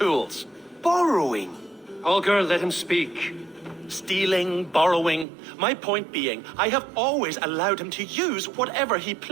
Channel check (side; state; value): left; drops out; at 5.2 s